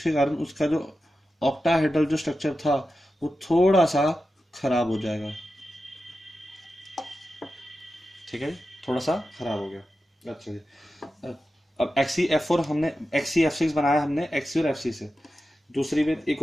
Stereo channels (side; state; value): both; normal; correlation 0.92